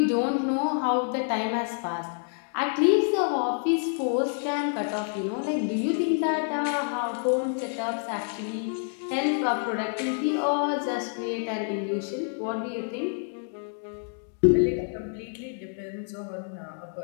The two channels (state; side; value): silent; right; 57 dB below the other